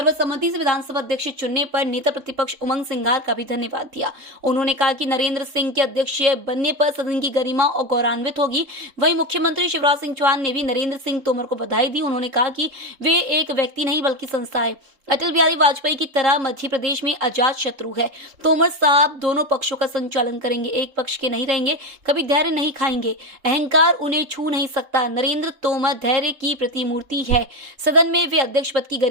से विधानसभा अध्यक्ष चुनने पर नेता प्रतिपक्ष उमंग सिंघार का भी धन्यवाद दिया। उन्होंने कहा कि नरेंद्र सिंह के अध्यक्ष बनने पर सदन की गरिमा और गौरवान्वित होगी। वहीं मुख्यमंत्री शिवराज सिंह चौहान ने भी नरेंद्र सिंह तोमर को बधाई दी। उन्होंने कहा कि वे एक व्यक्ति नहीं बल्कि संस्था है। अटल बिहारी वाजपेयी की तरह मध्य प्रदेश में अजात शत्रु है। तोमर साहब दोनों पक्षों का संचालन करेंगे, एक पक्ष के नहीं रहेंगे, कभी धैर्य नहीं खाएंगे, अहंकार उन्हें छू नहीं सकता। नरेंद्र तोमर धैर्य की प्रतिमूर्ति है। सदन में वे अध्यक्ष पद की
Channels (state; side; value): late; left; 3.7 ms